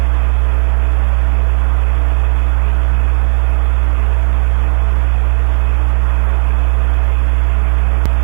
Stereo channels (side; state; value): left; silent; digital silence